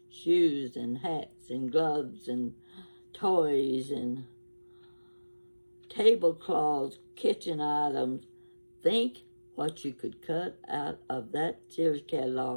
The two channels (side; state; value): both; inverted; correlation -1.00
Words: Shoes and hats and gloves and toys and tablecloths, kitchen items. Think what you could cut out of that Sears